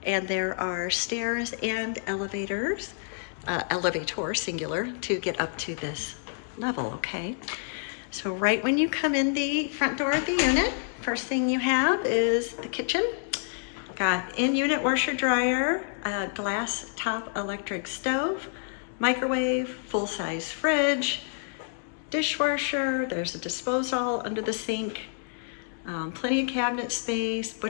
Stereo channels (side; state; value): right; silent; digital silence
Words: and there are stairs and elevators, elevator singular, to get up to this level, okay? So right when you come in the front door of the unit, first thing you have is the kitchen. Got in-unit washer dryer, a glass top electric stove, microwave, full-size fridge, dishwasher, there's a disposal under the sink, plenty of cabinet space,